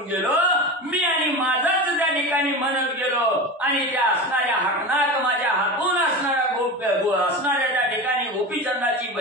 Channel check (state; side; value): normal; both; correlation 0.26